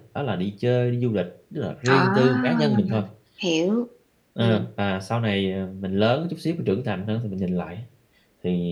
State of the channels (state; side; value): identical; both; correlation 1.00